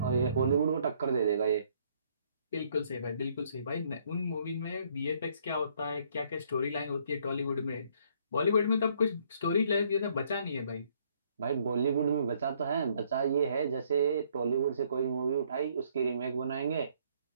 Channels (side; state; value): both; inverted; correlation -0.66